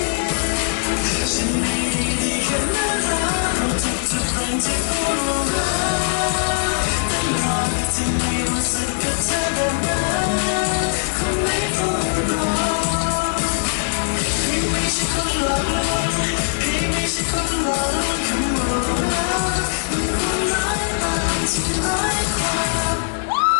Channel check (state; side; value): silent; right; digital silence